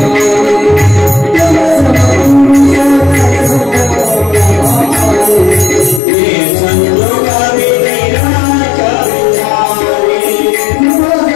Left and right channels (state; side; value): drops out; right; at 6.0 s